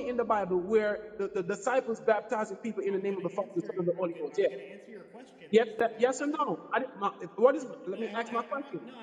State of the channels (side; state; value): both; identical; correlation 1.00